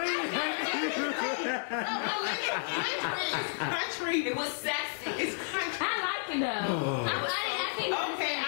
Country. It was sexy. It's country. I like it though. Okay,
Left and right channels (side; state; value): right; silent; digital silence